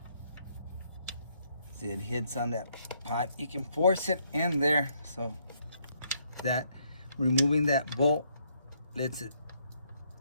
See, it hits on that pipe. You can force it in there, so that removing that bolt lets it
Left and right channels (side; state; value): both; inverted; correlation -0.72